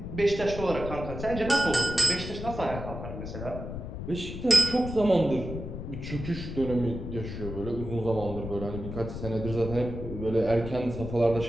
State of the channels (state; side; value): noise; left; rumble, 8 dB below the sound